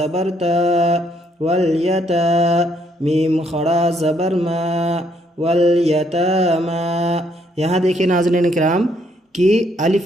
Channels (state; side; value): normal; both; correlation 0.70